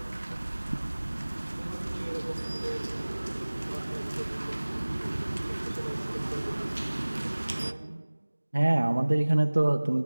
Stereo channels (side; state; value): both; inverted; correlation -1.00